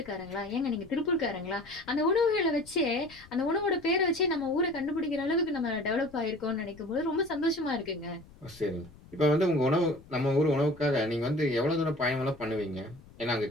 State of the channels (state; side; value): noise; left; rumble, 23 dB below the sound